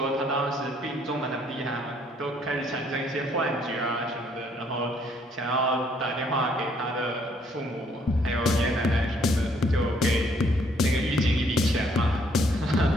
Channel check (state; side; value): normal; both; correlation 0.66